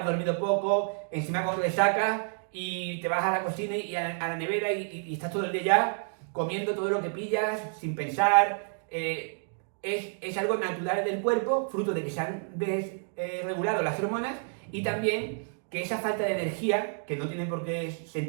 dormido poco, encima con resaca, y te vas a la cocina y a la nevera y estás todo el día ya comiendo todo lo que pillas, sin pensar. Es algo natural del cuerpo, fruto de que se han desregulado las hormonas, y también que esa falta de energía, que no tiene por qué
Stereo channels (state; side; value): silent; left; 58 dB below the other